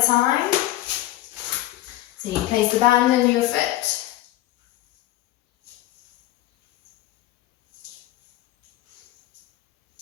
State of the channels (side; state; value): right; quieter; 15.7 dB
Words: a time. So you place the band under your foot.